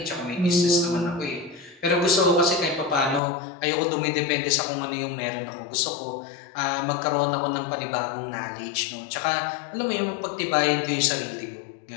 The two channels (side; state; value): right; drops out; at 3.2 s